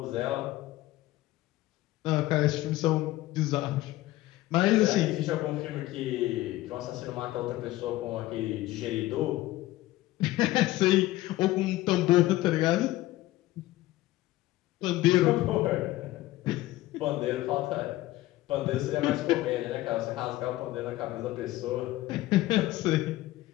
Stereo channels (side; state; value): right; quieter; 16.8 dB